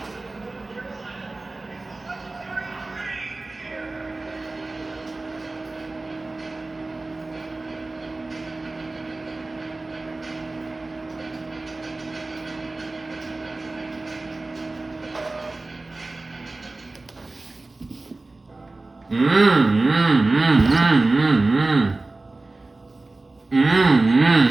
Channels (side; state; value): left; quieter; 3.2 dB